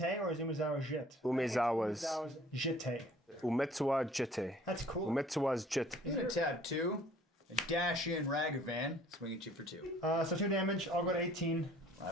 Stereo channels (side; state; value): both; normal; correlation 0.54